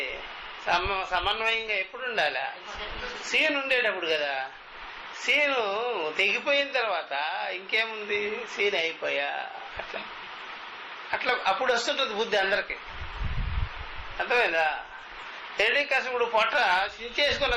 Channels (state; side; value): identical; both; correlation 1.00